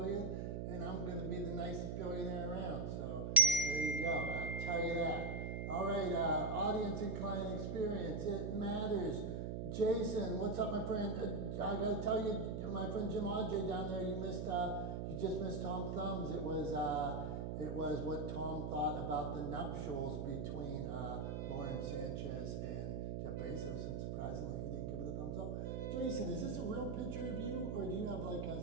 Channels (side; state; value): right; noise; hum, 2 dB below the sound